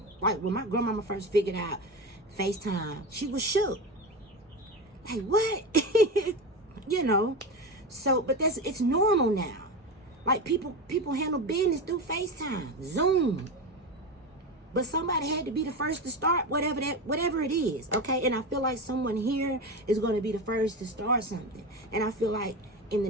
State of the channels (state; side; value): normal; both; correlation 0.21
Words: Like when my grandmama first figured out FaceTime, she was shook. Like, what? You know? So, but it's normal now. Like people handle business through FaceTime, Zoom. But somebody had to be the first to start whatever it is, okay? And I feel like someone here is going to be the first to start something. And I feel like in the